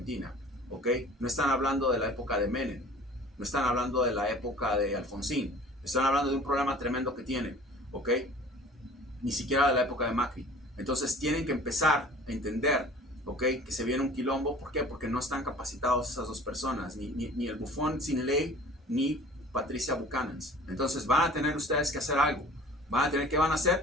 ¿ok? No están hablando de la época de Menem, no están hablando de la época de Alfonsín, están hablando de un problema tremendo que tienen, ¿ok? Ni siquiera de la época de Macri. Entonces tienen que empezar a entender, ¿ok? Que se viene un quilombo. ¿Por qué? Porque no están capacitados esas dos personas, ni el bufón sin ley, ni Patricia Buchanan. Entonces van a tener ustedes que hacer algo. ¿Qué van a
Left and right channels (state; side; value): normal; both; correlation 0.46